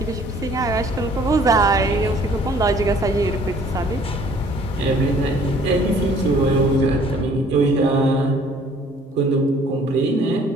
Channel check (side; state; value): both; normal; correlation 0.56